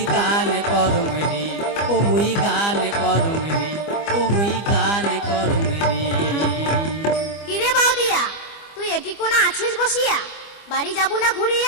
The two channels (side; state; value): right; late; 25 ms